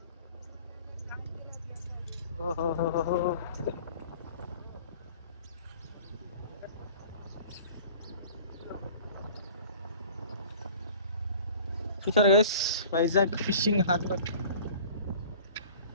ఓహో, చూసారు guys, Vizag fishing harbour.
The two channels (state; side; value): inverted; both; correlation -0.45